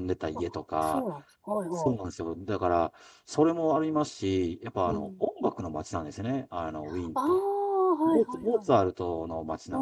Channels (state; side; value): identical; both; correlation 1.00